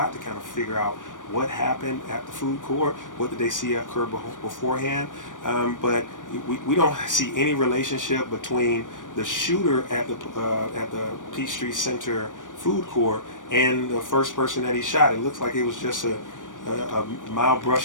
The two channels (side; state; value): right; late; 0.88 ms